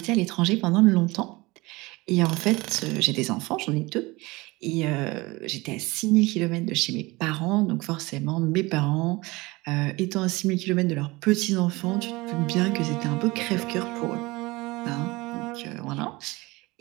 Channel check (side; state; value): left; quieter; 22.5 dB